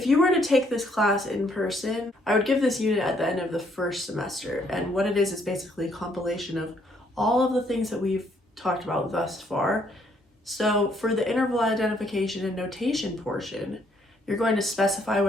you were to take this class in person, I would give this unit at the end of the first semester. And what it is basically a compilation of all of the things that we've talked about thus far. So for the interval identification and notation portion, you're going to specify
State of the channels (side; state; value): both; normal; correlation 0.68